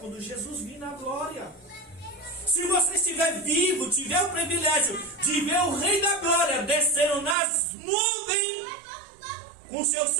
Jesus vir na glória. Se você estiver vivo, tiver o privilégio de ver o Rei da Glória descendo nas nuvens com seus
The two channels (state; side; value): drops out; left; at 7.4 s